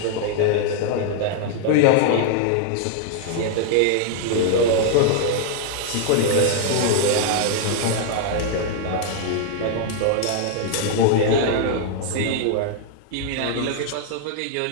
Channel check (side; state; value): both; different; correlation 0.00